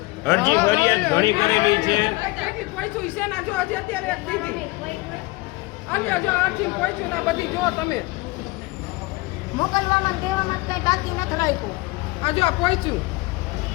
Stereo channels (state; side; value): quieter; right; 22.6 dB